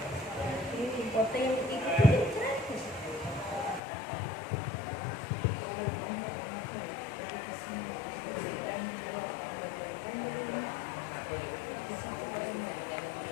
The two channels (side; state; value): right; drops out; at 3.8 s